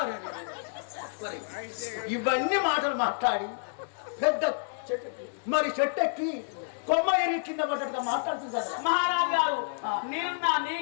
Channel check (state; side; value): silent; right; digital silence